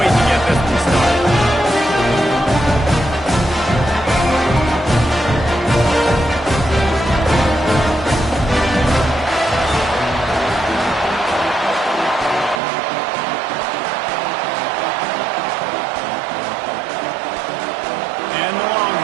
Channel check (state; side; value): drops out; left; at 12.6 s